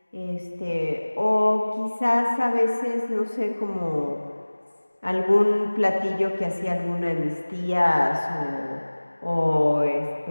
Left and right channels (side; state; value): both; inverted; correlation -1.00